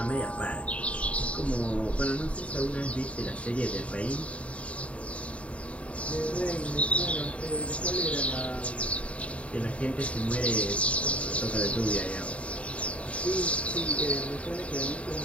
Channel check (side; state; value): right; late; 0.064 ms